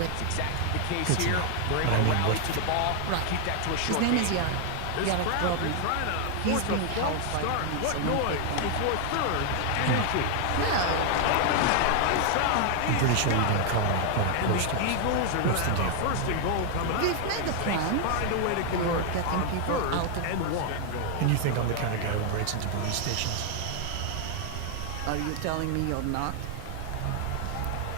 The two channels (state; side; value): different; both; correlation 0.00